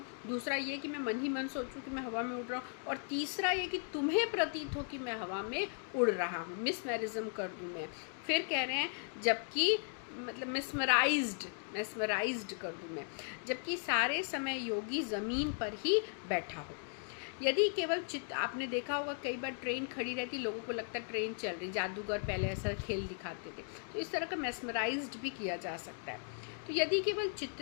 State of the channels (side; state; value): right; silent; 53 dB below the other